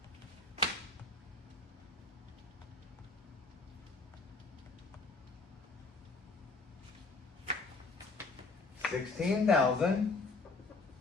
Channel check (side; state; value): right; quieter; 3.7 dB